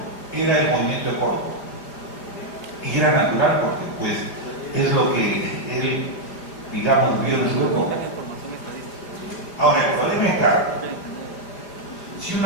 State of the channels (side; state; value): right; late; 4.9 ms